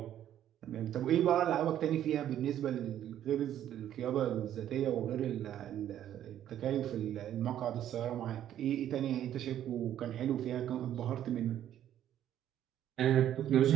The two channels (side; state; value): left; quieter; 11.2 dB